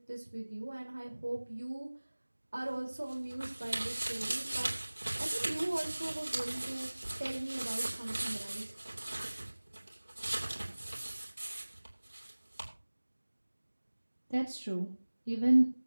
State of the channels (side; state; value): both; inverted; correlation -1.00